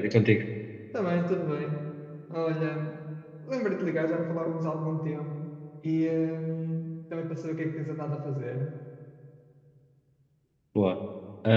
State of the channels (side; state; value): both; identical; correlation 1.00